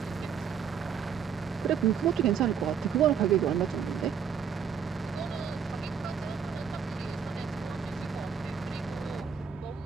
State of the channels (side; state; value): left; quieter; 7.2 dB